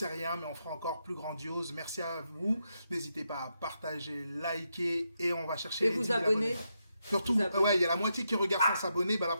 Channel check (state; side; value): inverted; both; correlation -0.83